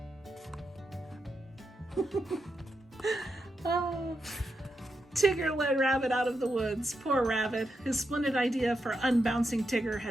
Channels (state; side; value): normal; both; correlation 0.85